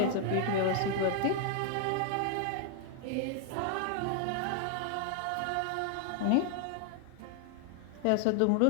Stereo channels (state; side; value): different; both; correlation 0.00